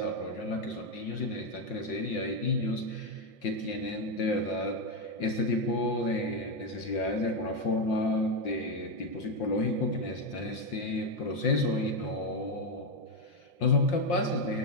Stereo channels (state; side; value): late; right; 5.7 ms